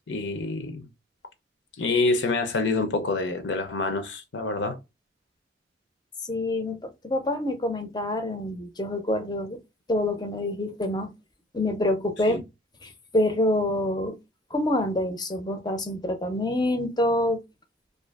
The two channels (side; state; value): both; normal; correlation 0.45